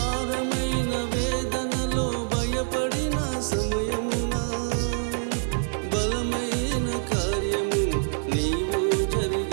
వేదనలో భయపడిన సమయమున బలమైన కార్యము నీవు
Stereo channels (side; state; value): left; silent; 59 dB below the other